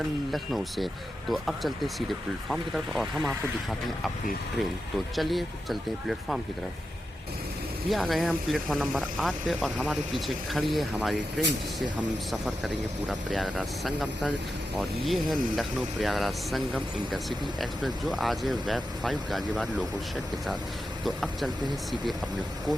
लखनऊ से। तो अब चलते हैं सीधे प्लेटफॉर्म की तरफ और हम आपको दिखाते हैं अपनी ट्रेन। तो चलिए चलते हैं प्लेटफॉर्म की तरफ। ये आ गए हैं हम प्लेटफॉर्म नंबर 8 पे और हमारे पीछे खड़ी है हमारी ट्रेन, जिससे हम सफ़र करेंगे पूरा प्रयागराज संगम तक। और ये है लखनऊ प्रयागराज संगम इंटरसिटी एक्सप्रेस, जो आज है वेब 5 गाजियाबाद लोको शेड के साथ। तो अब चलते हैं सीधे अपने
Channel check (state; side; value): normal; both; correlation 0.89